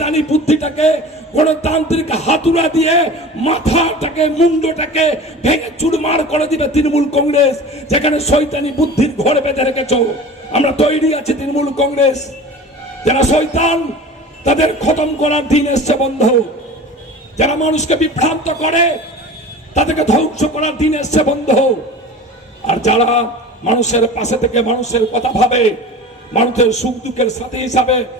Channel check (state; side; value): normal; both; correlation 0.37